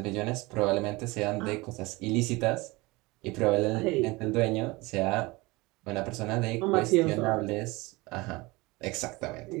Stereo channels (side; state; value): left; quieter; 23.0 dB